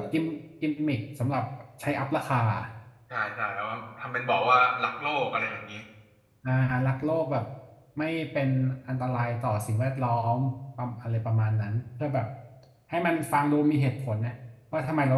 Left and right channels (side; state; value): both; identical; correlation 1.00